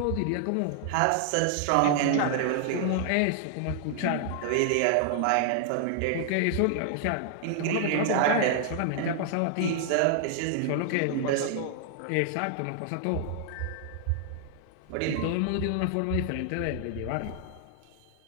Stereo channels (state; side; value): different; both; correlation 0.00